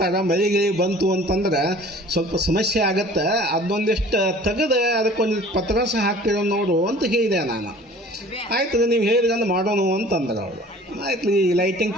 ಮಳೆ ಬಂತು ಅಂತಂದ್ರೆ ಸ್ವಲ್ಪ ಸಮಸ್ಯೆ ಆಗತ್ತೆ, ಅದೊಂದಿಷ್ಟು ತೆಗೆದು ಅದಕ್ಕೊಂದು ಪತ್ರಾಸ ಹಾಕ್ತಿರೋ ನೋಡು ಅಂತ ಹೇಳಿದೆ ನಾನು. ಆಯ್ತು ನೀವು ಹೇಳಿದ್ರೆ ಮಾಡೋಣ ಅಂತಂದ್ರೆ ಅವರು. ಆಯ್ತು ಈ ಲೈಟಿಂಗ್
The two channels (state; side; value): normal; both; correlation 0.47